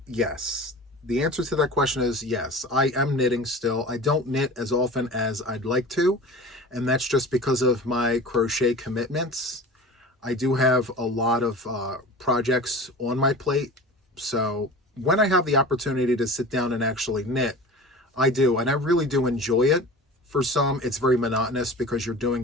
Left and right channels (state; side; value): normal; both; correlation 0.36